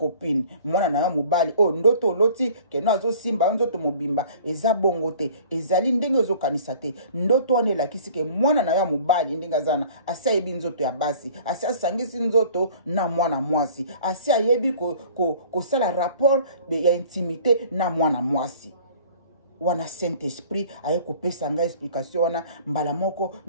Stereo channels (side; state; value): both; inverted; correlation -0.49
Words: mwana na mobali o ndoto loti keno azo simba nzoto mobimba eza bongo te ezali ndenge ozo kanisa te ndoto wana elakisi ke mwana na mobali ndenga zana asaibi nzoto ya basi asangisi nzoto na mwana mwasi ayebi kosala rapport ya intimité na mwana mwasi wana Saint Esprit aye kopesa nga explication wana mbala moko